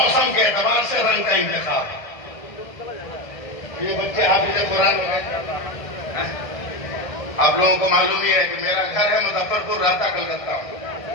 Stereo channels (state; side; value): late; right; 1.6 ms